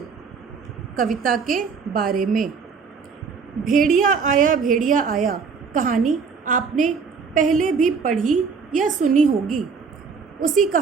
कविता के बारे में। भेड़िया आया कहानी आपने पहले भी पढ़ी या सुनी होगी। उसी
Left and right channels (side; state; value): left; quieter; 5.4 dB